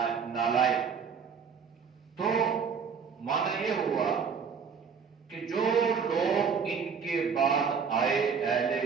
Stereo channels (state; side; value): quieter; left; 6.3 dB